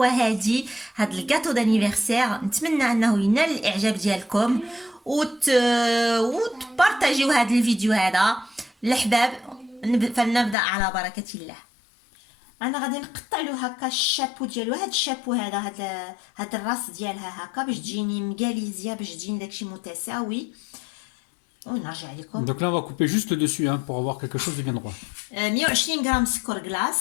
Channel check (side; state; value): right; drops out; at 10.6 s